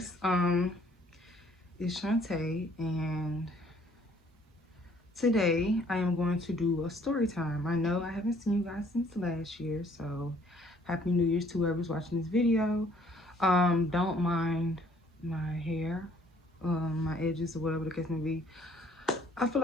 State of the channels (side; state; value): both; normal; correlation 0.61